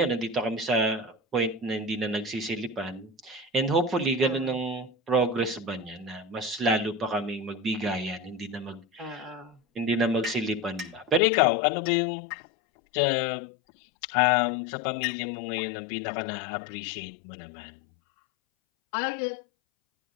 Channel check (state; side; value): drops out; right; at 11.2 s